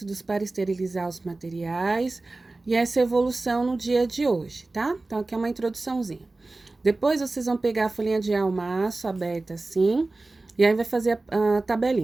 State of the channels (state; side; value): quieter; left; 3.2 dB